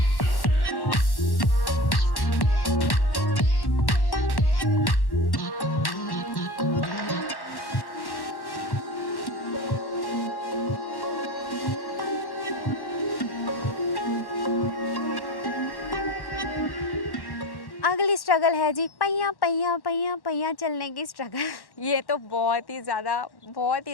अगली स्ट्रगल है जी पहिया पहिया पहिया पहिया चलने की स्ट्रगल। ये तो बहुत ही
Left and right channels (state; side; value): late; right; 1.1 ms